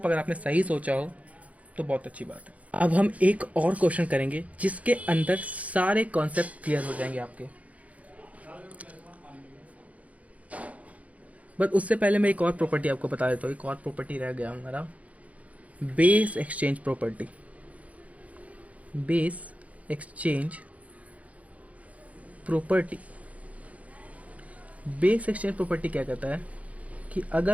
अगर आपने सही सोचा हो तो बहुत अच्छी बात है। अब हम एक और क्वेश्चन करेंगे जिसके अंदर सारे कॉन्सेप्ट क्लियर हो जाएंगे आपके। बट उससे पहले मैं एक और प्रॉपर्टी आपको बता देता हूँ। एक और प्रॉपर्टी रह गया हमारा, base exchange property. Base exchange property, base exchange property क्या कहता है कि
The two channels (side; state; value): left; late; 0.068 ms